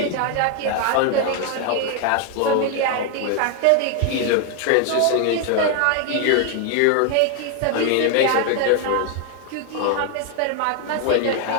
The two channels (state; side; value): different; both; correlation 0.00